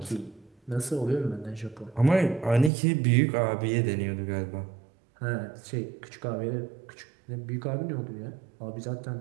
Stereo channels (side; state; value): left; drops out; at 2.7 s